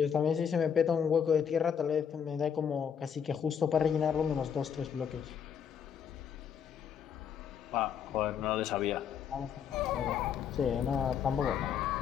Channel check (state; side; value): quieter; right; 7.7 dB